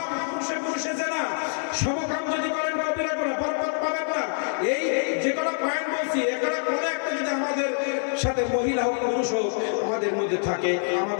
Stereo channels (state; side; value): silent; right; 61 dB below the other